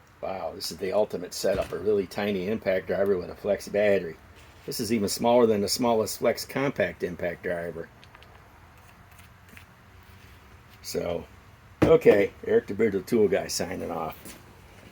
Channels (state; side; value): identical; both; correlation 1.00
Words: Wow, this is the ultimate setup. A really tiny impact driver with a flex battery. This is even smaller than the smallest flex compact impact driver. So, okay, Eric the Bearded Tool Guy signing off.